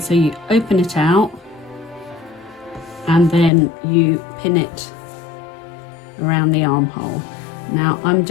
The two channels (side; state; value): right; drops out; at 3.5 s